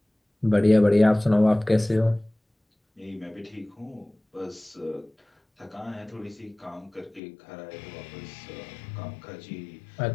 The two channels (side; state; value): right; drops out; at 7.2 s